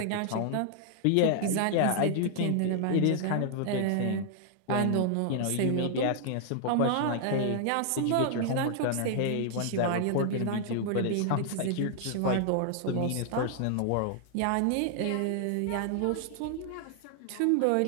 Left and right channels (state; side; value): different; both; correlation 0.00